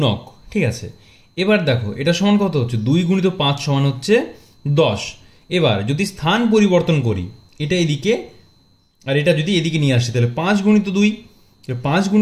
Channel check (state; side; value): identical; both; correlation 1.00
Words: ঠিক আছে। এবার দেখো, এটা সমান কত হচ্ছে? 2 গুণিত 5 সমান হচ্ছে 10। এবার যদি স্থান পরিবর্তন করি, এটা এদিকে আর এটা যদি এদিকে নিয়ে আসি, তাহলে 5 গুণিত 2, 5